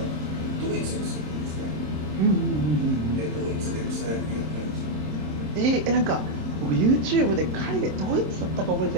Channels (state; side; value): late; left; 27 ms